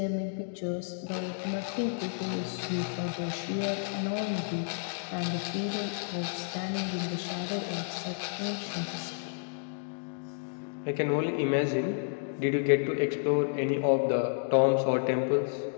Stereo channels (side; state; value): right; silent; digital silence